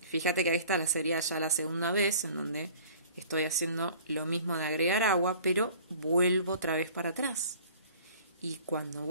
Fíjate que esta sería ya la segunda vez en donde estoy haciendo lo mismo de agregar agua, pero vuelvo otra vez para atrás. Y cuando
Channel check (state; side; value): inverted; both; correlation -0.49